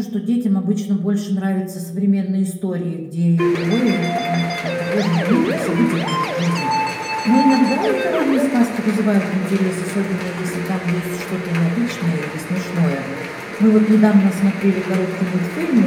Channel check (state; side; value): identical; both; correlation 1.00